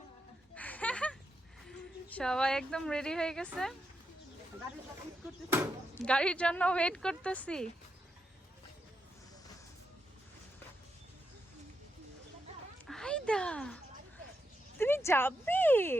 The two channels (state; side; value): normal; both; correlation 0.84